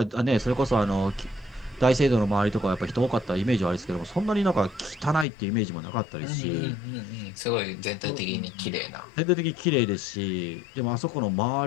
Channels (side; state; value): right; drops out; at 5.2 s